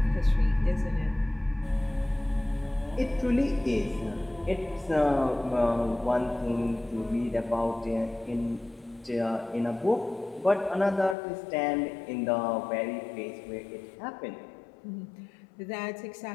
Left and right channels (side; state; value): right; drops out; at 11.2 s